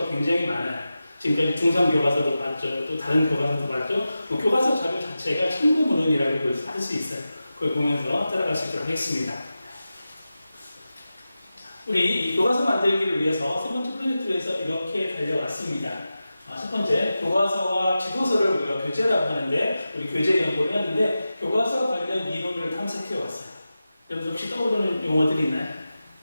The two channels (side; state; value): both; inverted; correlation -0.93